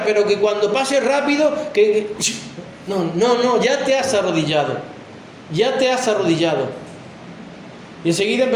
pero que cuando pase rápido, No, ya te has arrodillado. Ya te has arrodillado. Y enseguida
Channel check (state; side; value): identical; both; correlation 1.00